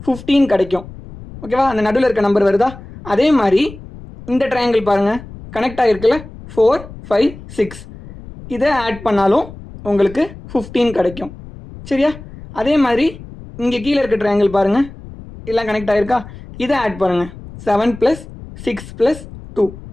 15 கிடைக்கும். ஓகேவா, அந்த நடுவில் இருக்க நம்பர் வருதா? அதே மாதிரி இந்த ட்ரையாங்கிள் பாருங்கள், கனெக்ட் ஆகிருக்குல்ல, 4 5 6 இதை ஆட் பண்ணாலும் உங்களுக்கு 15 கிடைக்கும். சரியா, அதே மாதிரி இங்கே கீழே இருக்க ட்ரையாங்கிள் பாருங்கள், எல்லாம் கனெக்ட் ஆகிருக்கா, இதை ஆட் பண்ணுங்கள். 7 + 6 + 2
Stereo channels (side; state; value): left; noise; rumble, 16 dB below the sound